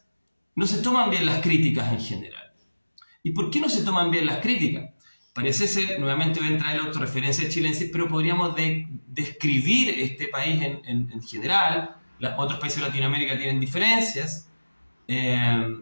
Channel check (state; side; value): inverted; both; correlation -1.00